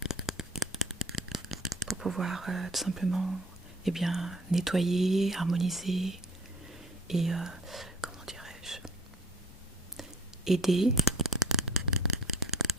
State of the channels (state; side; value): normal; both; correlation 0.50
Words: Pour pouvoir tout simplement nettoyer, harmoniser et comment dirais-je, aider